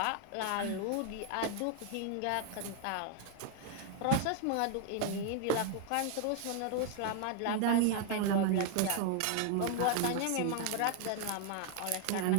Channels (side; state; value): both; different; correlation 0.00